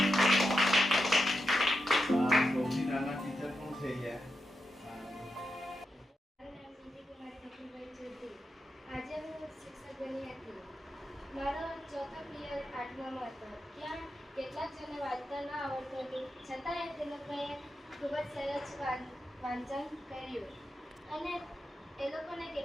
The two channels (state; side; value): normal; both; correlation 0.87